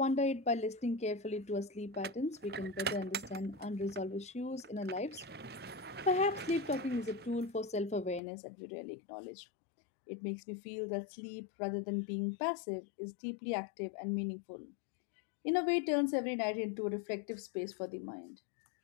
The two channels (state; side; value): drops out; right; at 8.2 s